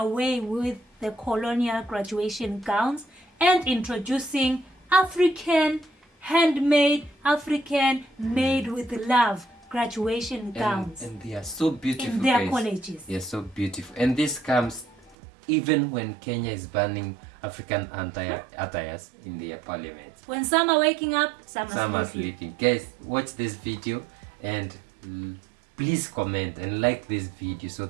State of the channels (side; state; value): left; drops out; at 15.2 s